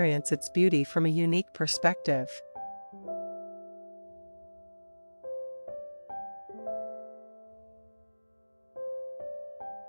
its beauty from a unique perspective.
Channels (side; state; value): both; inverted; correlation -1.00